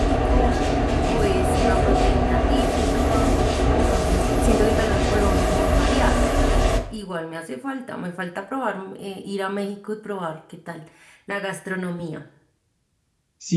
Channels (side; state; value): both; identical; correlation 1.00